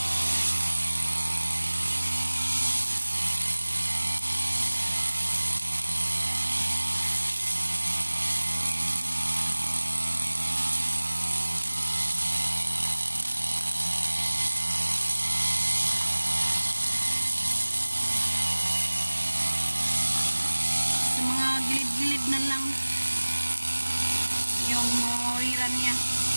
Gilid na lang yung mawiran niya.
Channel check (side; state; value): both; inverted; correlation -1.00